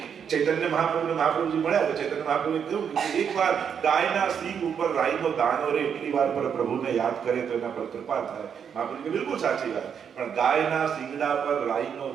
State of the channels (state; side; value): quieter; left; 7.5 dB